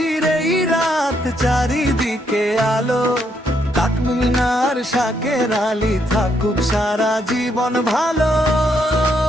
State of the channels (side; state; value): both; normal; correlation 0.75